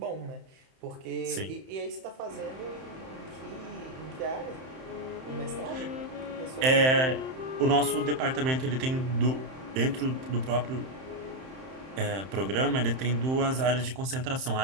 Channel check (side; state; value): left; late; 31 ms